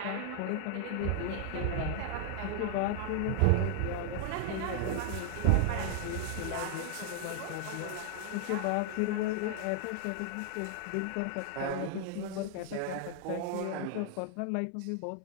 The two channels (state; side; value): different; both; correlation 0.00